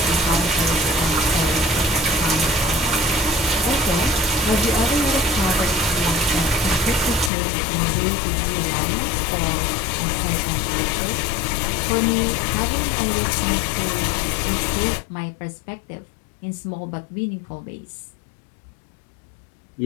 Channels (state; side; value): drops out; right; at 7.3 s